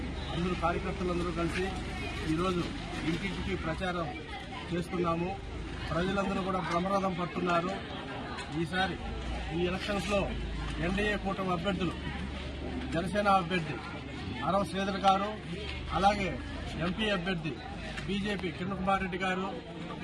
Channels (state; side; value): identical; both; correlation 1.00